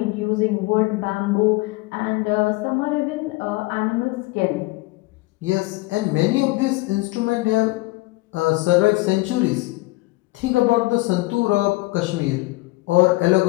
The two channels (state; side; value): quieter; right; 21.7 dB